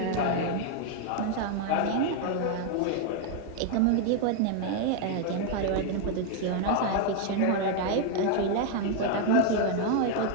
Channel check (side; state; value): both; different; correlation 0.00